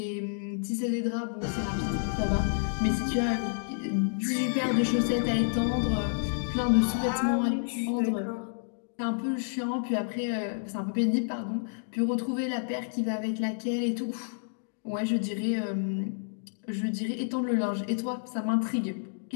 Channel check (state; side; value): silent; right; digital silence